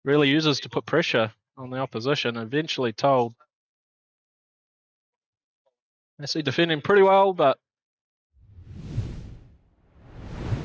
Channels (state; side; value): identical; both; correlation 1.00